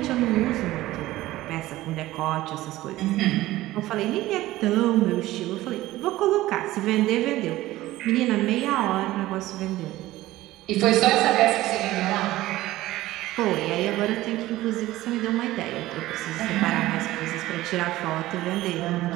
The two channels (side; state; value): left; quieter; 16.5 dB